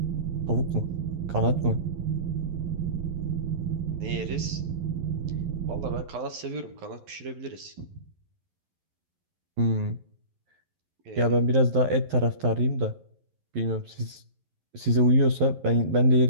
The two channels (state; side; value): late; left; 11 ms